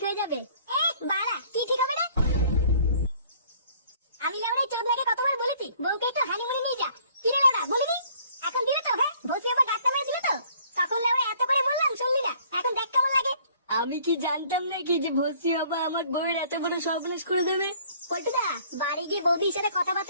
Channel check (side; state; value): both; inverted; correlation -0.57